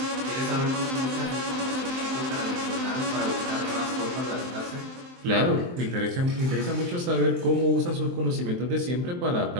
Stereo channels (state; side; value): late; left; 23 ms